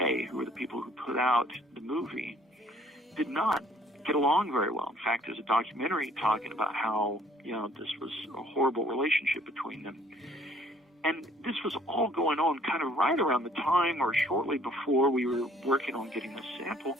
who were the people who put out the movie, did not get along very well. In fact, there's a documentary talking about how, this was a horrible relationship between them. And this was all going on kind of right around the time or shortly before we were working on getting the sample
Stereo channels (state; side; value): normal; both; correlation 0.59